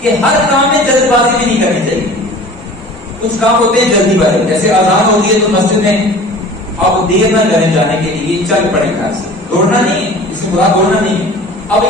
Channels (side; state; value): both; normal; correlation 0.43